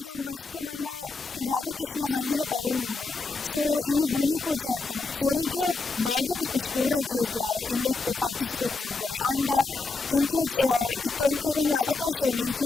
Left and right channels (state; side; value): quieter; right; 3.8 dB